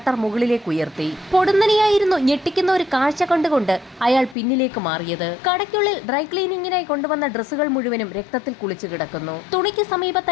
മുകളിലേക്ക് ഉയർത്തി. പൊടുന്നനെയായിരുന്നു ഞെട്ടിക്കുന്ന ഒരു കാഴ്ച കണ്ടുകൊണ്ട് അയാൾ പിന്നിലേക്ക് മാറിയത്. കടയ്ക്കുള്ളിൽ ഡ്രൈ ക്ലീനിങ്ങിനായി കൊണ്ടുവന്ന ഡ്രസ്സുകൾ മുഴുവനും രക്തത്തിൽ കുളിച്ചു കിടക്കുന്നു. തുണിക്ക്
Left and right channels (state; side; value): drops out; right; at 4.4 s